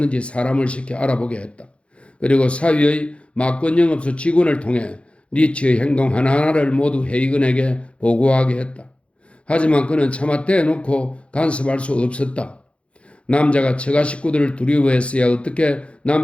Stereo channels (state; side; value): late; right; 0.060 ms